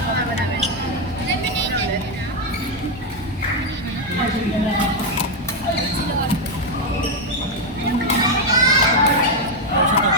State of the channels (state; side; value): normal; both; correlation 0.03